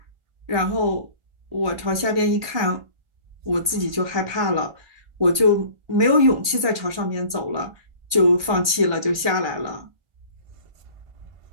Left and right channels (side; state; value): left; late; 1.2 ms